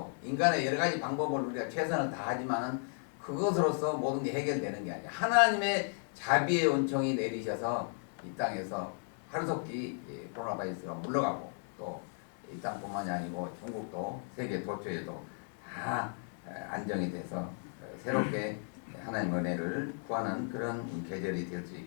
인간의 여러 가지 방법을 우리가 최선을 다하지만은 그것으로서 모든 게 해결되는 게 아니야. 하나님의 자비의 은총이 내리셔서 이 땅에서 하루속히 코로나 바이러스가 물러가고, 또 이 땅뿐만이 아니고 중국도 세계 도처에도 다 안정이 돼서 새롭게 하나님 은혜를 구하는 그런 계절이 될 수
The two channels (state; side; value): silent; right; 55 dB below the other